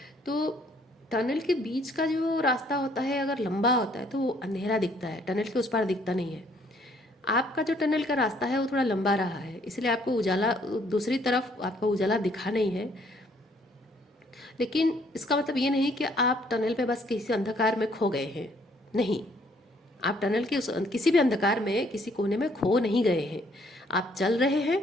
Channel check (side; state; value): both; normal; correlation 0.65